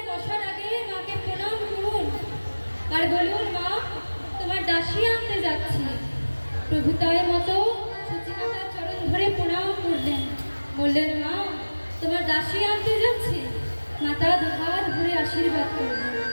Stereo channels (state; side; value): inverted; both; correlation -1.00